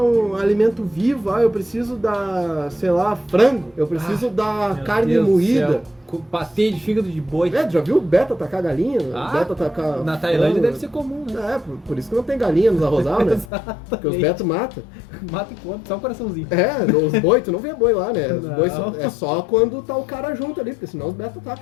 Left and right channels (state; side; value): drops out; right; at 13.5 s